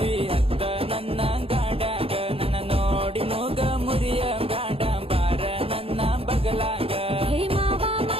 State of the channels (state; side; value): late; left; 0.27 ms